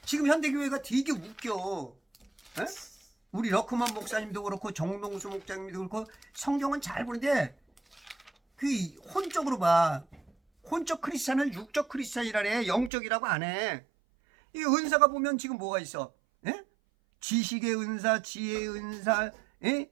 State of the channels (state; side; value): drops out; left; at 12.9 s